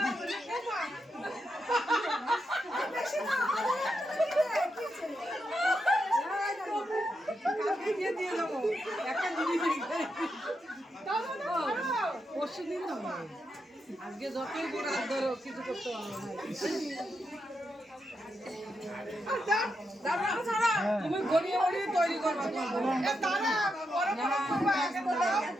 দিয়ে দিয়ে দেবো একটা জিনিস পরশু দিন দেবো আজকে যতই বড় হাত ধরো কিছু করতে পারবো না তুমি গড়িয়ে গড়িয়ে তৈরি করবা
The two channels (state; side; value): normal; both; correlation 0.84